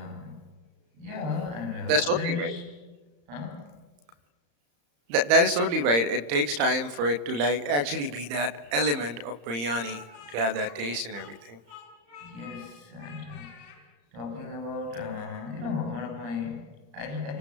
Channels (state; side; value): late; left; 35 ms